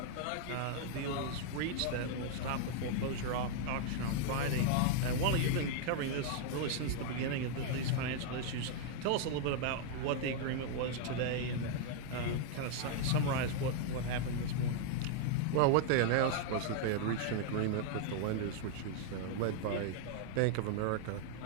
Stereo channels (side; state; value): both; different; correlation 0.00